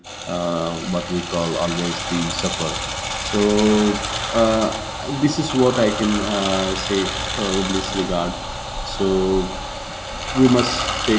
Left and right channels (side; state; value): both; identical; correlation 1.00